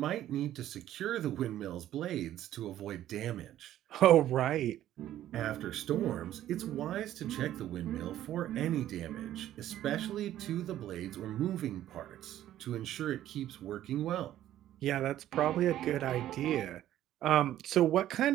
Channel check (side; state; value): left; quieter; 12.6 dB